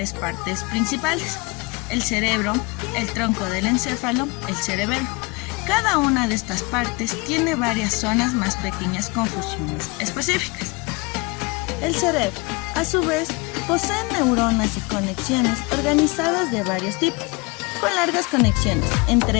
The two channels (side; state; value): right; quieter; 26.7 dB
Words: partes principales: el cerebro, el tronco del encéfalo, el cerebelo. Cada una de estas partes tiene varias zonas más pequeñas con funciones específicas. El cerebro, a su vez, posee neuronas y conexiones organizadas de varios tipos, con largas conexiones,